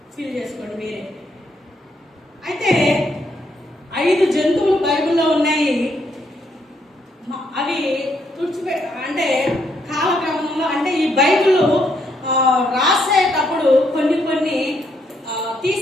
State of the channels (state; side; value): normal; both; correlation 0.74